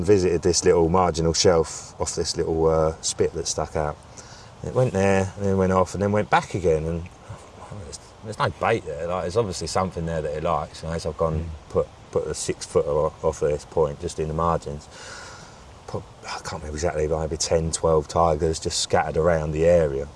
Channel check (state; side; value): identical; both; correlation 1.00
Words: visited this little marginal shelf off this little spit that stuck out. And it went there, and then went off, and then went back again. And there's no bait there. Like, there's obviously something there that it likes. You know, so I've gone and put a 6 footer off of this point, just in the margins. I can't remember exactly, but maybe 10, 12 tigers just scattered around the area.